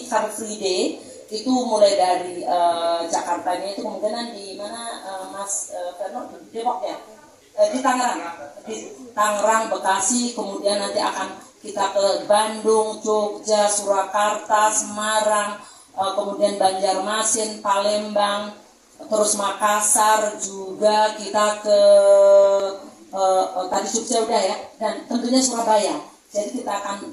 Car Free Day. Itu mulai dari Jakartanya itu kemungkinan di mana Mas Ferno, Depok ya, di Tangerang, Bekasi, kemudian nanti akan kita ke Bandung, Jogja, Surakarta, Semarang, kemudian Banjarmasin, Palembang, terus Makassar juga kita ke tadi Jogja udah ya, dan tentunya Surabaya. Jadi kita akan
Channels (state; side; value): identical; both; correlation 1.00